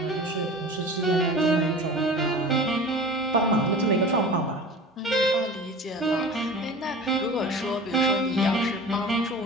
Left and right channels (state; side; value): normal; both; correlation 0.37